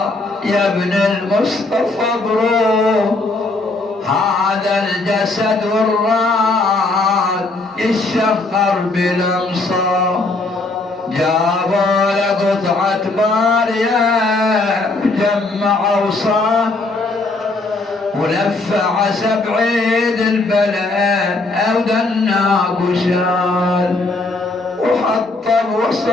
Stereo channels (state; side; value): quieter; right; 3.2 dB